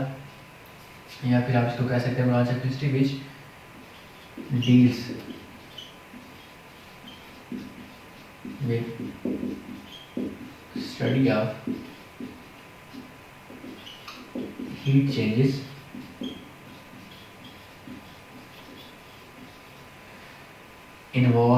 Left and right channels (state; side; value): identical; both; correlation 1.00